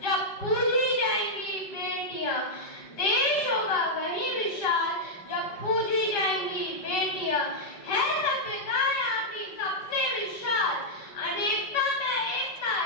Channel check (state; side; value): late; right; 5.3 ms